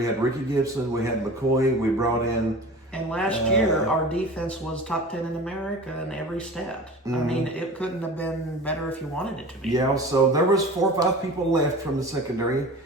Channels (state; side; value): normal; both; correlation 0.37